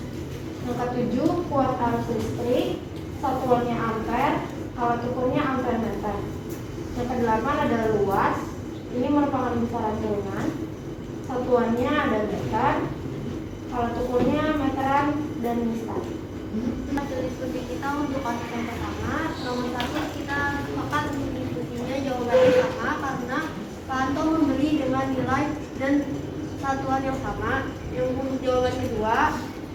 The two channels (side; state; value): both; identical; correlation 1.00